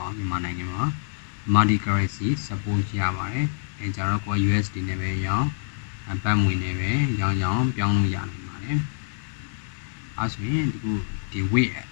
ါဘူးမြန်မာနိုင်ငံမှာ multi currency support ရပါတယ်အဲကြတော့ကို USD နဲ့ပဲရောင်းဘတ်ငွေနဲ့ပဲရောင်းပြောင်းလို့ရနိုင်ပါတယ်အဲဆိုရင်ဒီ Wave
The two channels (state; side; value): silent; right; digital silence